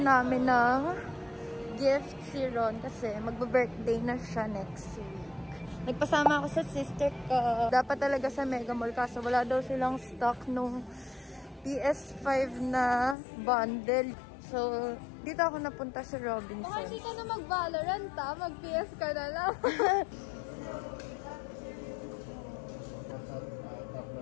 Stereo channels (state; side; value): drops out; right; at 13.2 s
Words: namin ng gift si Ron kasi magbe-birthday na siya next week. Nagpasama ako sa sister ko. Dapat talaga sa Mega Mall kaso wala daw silang stock nung PS5 na bundle. So, dito ako napunta sa Robinsons. Baka hindi ka na mag-Valorant mag-PS ka na lang.